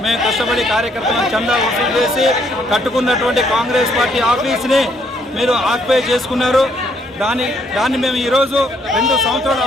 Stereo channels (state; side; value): normal; both; correlation 0.69